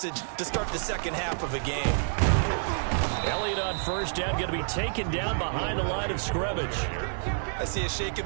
to start the second half of a game. Elliott on first down, going to be taken down behind the line of scrimmage. I see a shake of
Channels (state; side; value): silent; left; 59 dB below the other